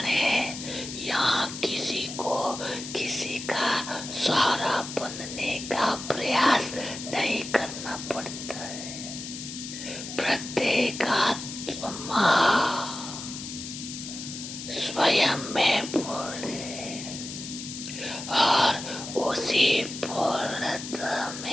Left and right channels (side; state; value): left; noise; hiss, 9 dB below the sound